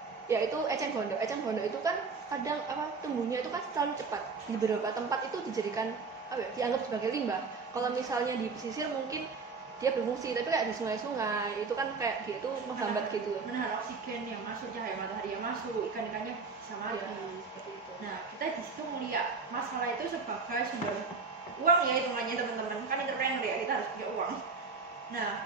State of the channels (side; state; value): left; quieter; 4.7 dB